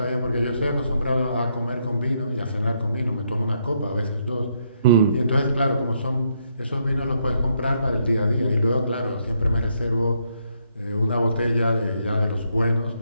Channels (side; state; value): both; inverted; correlation -0.75